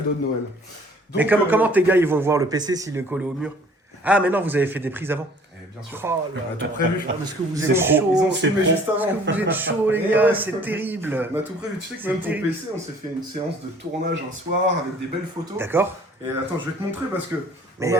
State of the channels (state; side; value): normal; both; correlation 0.53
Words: de Noël. Mais Donc, comment tes gars ils vont voir le PC s'il est collé au mur? Ah, mais non, vous avez fait des prises avant. bien sûr. Oh là On a tout là. prévu. Ah, parce que vous Ils êtes ont chaud. ils ont filmé juste Parce avant. que vous êtes chaud, les Et gars, ouais. c'est terrible. On a tout prévu. Tu sais que C'est même ton terrible. PC, on s'est fait une séance de tournage un soir avec des belles photos. D'accord. Et attends, je vais te montrer parce que Mais,